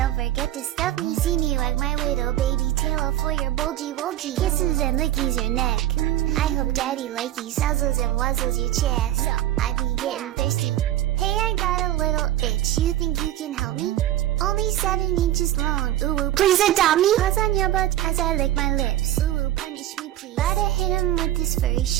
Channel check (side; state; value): left; quieter; 13.3 dB